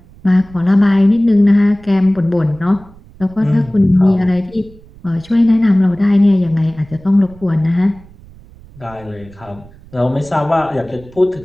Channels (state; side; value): noise; right; rumble, 23 dB below the sound